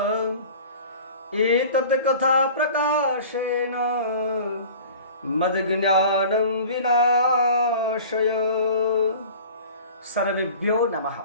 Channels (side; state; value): both; inverted; correlation -0.42